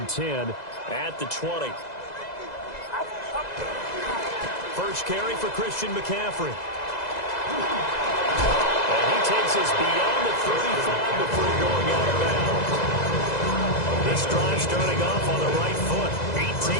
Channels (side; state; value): right; late; 2.0 ms